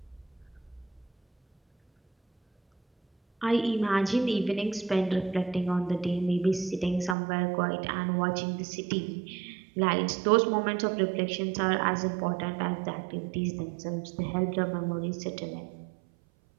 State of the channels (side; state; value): left; drops out; at 7.2 s